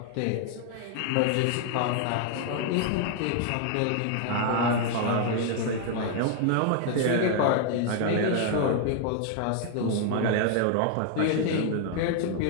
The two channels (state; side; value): different; both; correlation 0.00